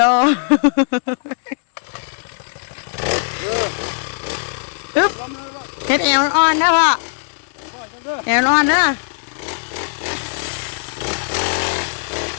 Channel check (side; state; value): right; silent; digital silence